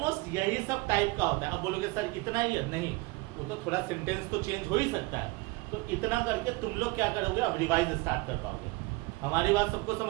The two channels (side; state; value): left; quieter; 24.2 dB